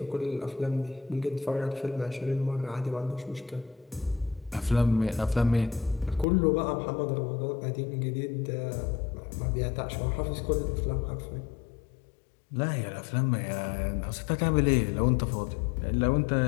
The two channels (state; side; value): drops out; right; at 6.2 s